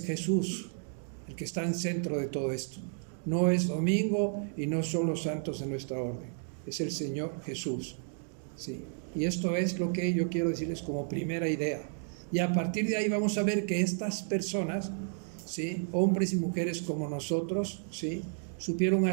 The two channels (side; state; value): left; silent; 56 dB below the other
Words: Jesús el que está en centro de todo esto. No es domingo y no son los santos de nuestra orden, es el Señor Jesús, ¿sí? Y esto es lo que yo quiero decirles como primera idea. Y a partir de ahí vamos a ver que estas personas, ¿sí?, hombres y mujeres como nosotros, ¿sí?, supieron